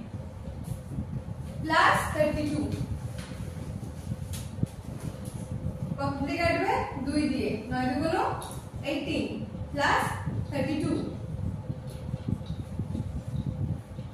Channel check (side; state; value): both; identical; correlation 1.00